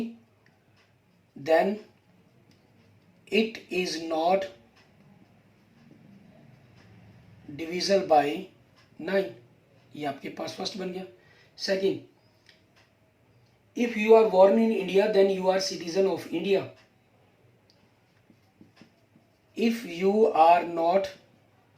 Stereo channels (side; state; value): both; identical; correlation 1.00